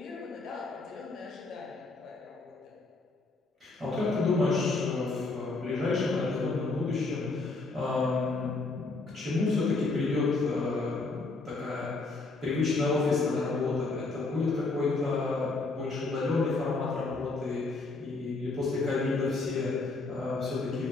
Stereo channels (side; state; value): right; quieter; 3.5 dB